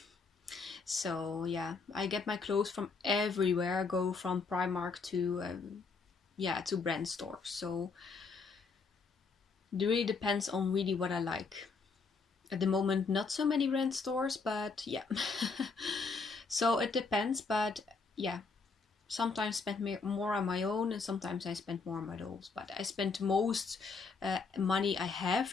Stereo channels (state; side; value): quieter; right; 4.6 dB